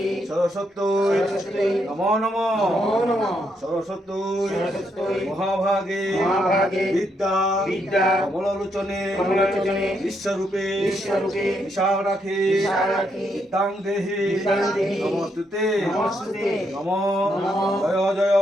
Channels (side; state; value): both; normal; correlation 0.77